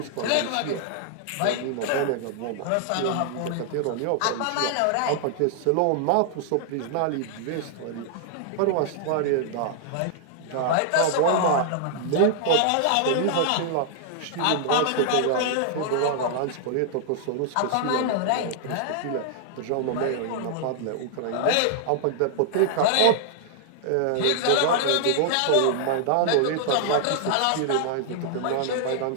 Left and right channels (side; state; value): both; different; correlation -0.01